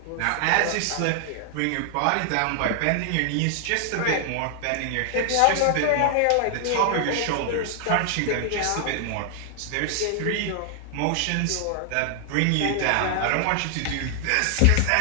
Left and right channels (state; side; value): different; both; correlation 0.00